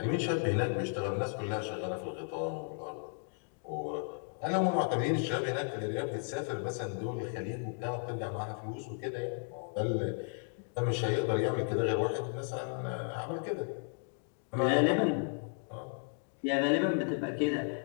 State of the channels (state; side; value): silent; right; 55 dB below the other